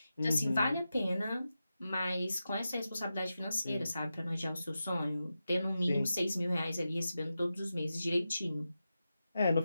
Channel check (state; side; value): inverted; both; correlation -0.91